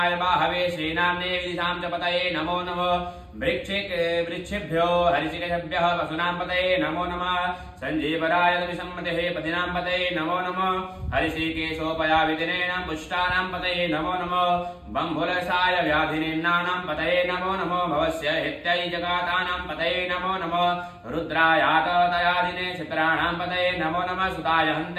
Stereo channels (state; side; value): identical; both; correlation 1.00